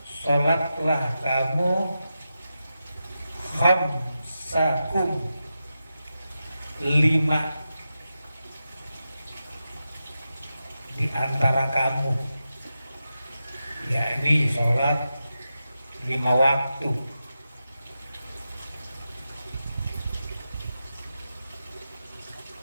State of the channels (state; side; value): inverted; both; correlation -0.90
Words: salatlah kamu, khamsakum, 5 di antara kamu, yakni sholat 5 waktu."